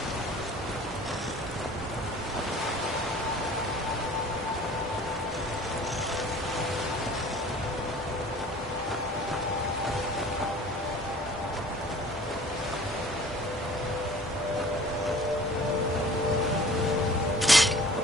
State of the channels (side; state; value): both; normal; correlation 0.48